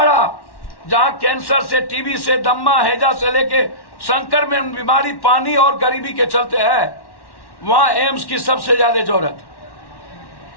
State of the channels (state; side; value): late; right; 1.1 ms